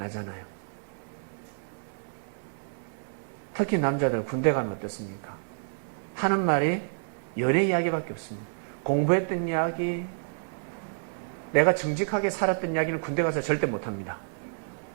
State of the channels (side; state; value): left; silent; digital silence